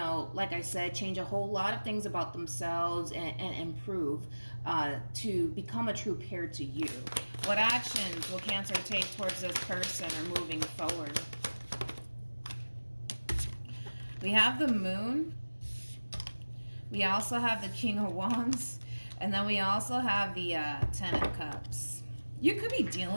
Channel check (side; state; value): both; inverted; correlation -1.00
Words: like I said, change a whole lot of things about themselves and improve to become a true pair to you. What actions will Cancer take towards this person or moving forward? We have the Moon. We also have the King of Wands. And then we also have the Ten of Cups. You could be